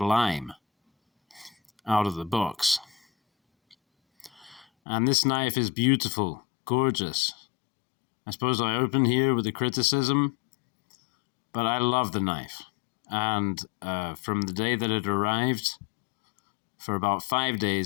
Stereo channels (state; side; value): drops out; right; at 4.7 s